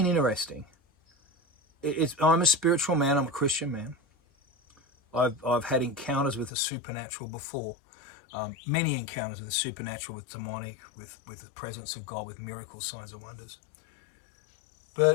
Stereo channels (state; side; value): drops out; right; at 6.5 s